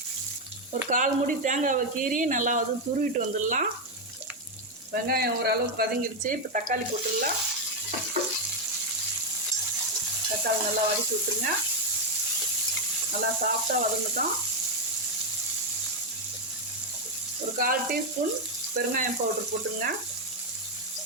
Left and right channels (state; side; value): normal; both; correlation 0.04